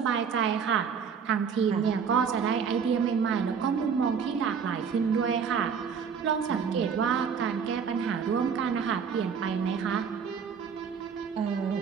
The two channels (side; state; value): left; quieter; 6.6 dB